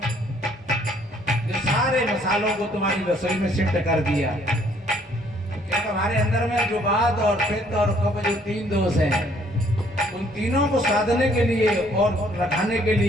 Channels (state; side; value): normal; both; correlation 0.63